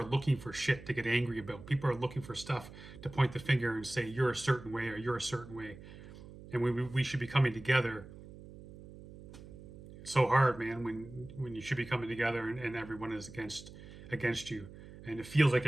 looking for shit to get angry about. People are looking for stuff to point the finger and say, you're a certain way or you're a certain way. And we should be coming together. It's so hard, man, when you should be coming together and everyone is against you. And it feels like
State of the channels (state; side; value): noise; right; hum, 16 dB below the sound